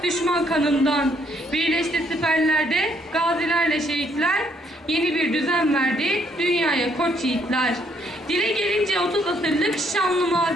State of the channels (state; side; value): normal; both; correlation 0.69